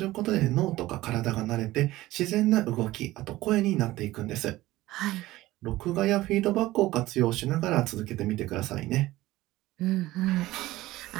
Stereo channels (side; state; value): left; quieter; 17.2 dB